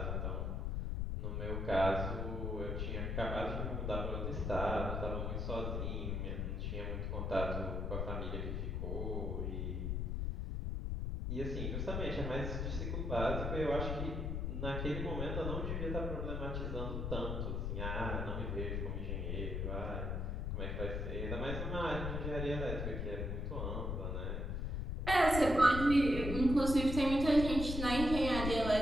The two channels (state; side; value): noise; left; rumble, 1 dB below the sound